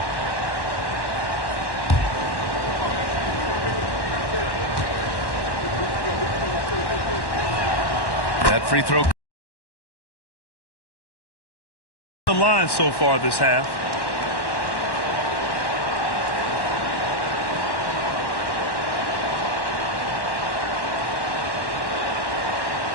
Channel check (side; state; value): right; late; 1.1 ms